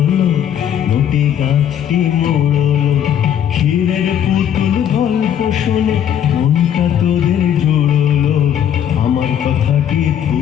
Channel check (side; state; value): right; quieter; 9.6 dB